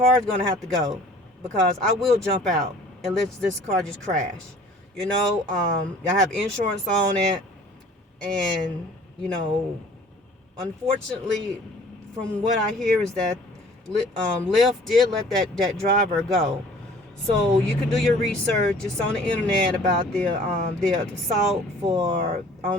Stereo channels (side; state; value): both; normal; correlation 0.50